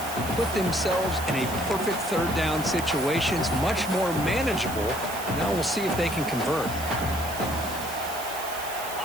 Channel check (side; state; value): right; noise; hiss, 10 dB below the sound